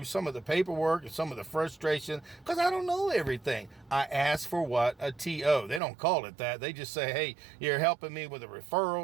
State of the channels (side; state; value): left; drops out; at 5.8 s